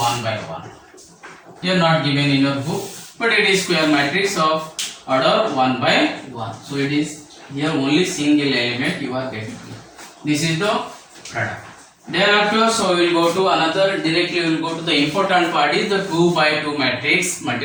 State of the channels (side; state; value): both; identical; correlation 1.00